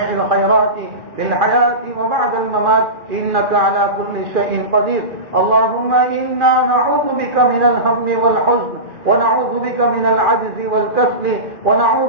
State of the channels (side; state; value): left; late; 2.4 ms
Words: الخيرات في الحياة وبعد الممات إنك على كل شيء قدير. اللهم إنا نعوذ بك من الهم والحزن ونعوذ بك من العجز والكسل